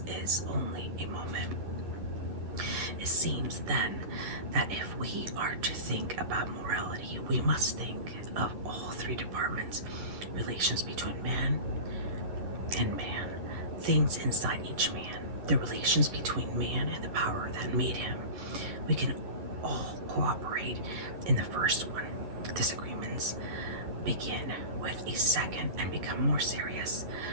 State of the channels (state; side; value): late; left; 11 ms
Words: is only a moment. It seems then that if we are to think about morality, we must think of all three departments: relations between man and man, things inside each man, the relations between man and the power that made him. We can all cooperate in the first one. Disagreements begin with a second and become more serious